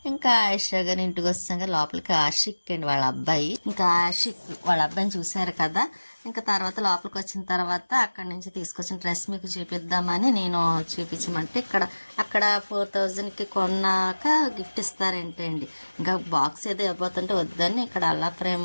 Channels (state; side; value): inverted; both; correlation -1.00